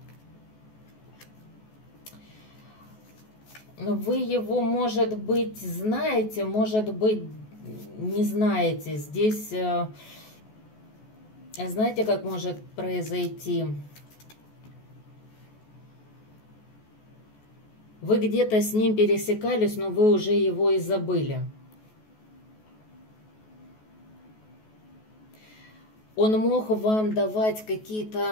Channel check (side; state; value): right; late; 14 ms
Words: Вы его, может быть, знаете, может быть, не знаете. Здесь, знаете, как может произойти? Вы где-то с ним пересекались, но вы уже его и забыли. Он мог вам давать